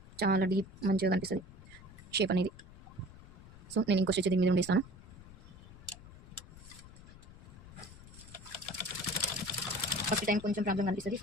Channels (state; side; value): noise; left; rumble, 18 dB below the sound